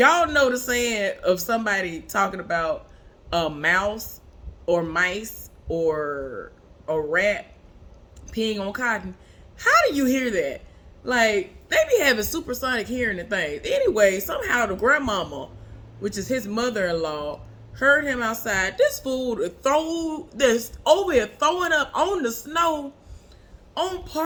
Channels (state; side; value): identical; both; correlation 1.00